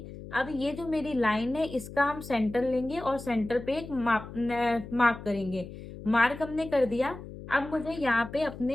अब ये जो मेरी लाइन है इसका हम सेंटर लेंगे और सेंटर पे एक मार्क करेंगे। मार्क हमने कर दिया। अब मुझे यहाँ पे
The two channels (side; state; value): left; noise; hum, 13 dB below the sound